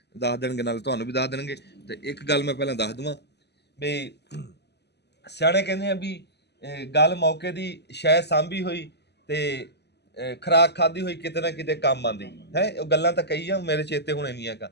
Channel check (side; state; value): right; late; 0.49 ms